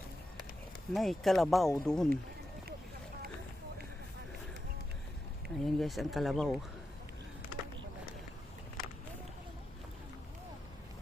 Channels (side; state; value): both; normal; correlation 0.88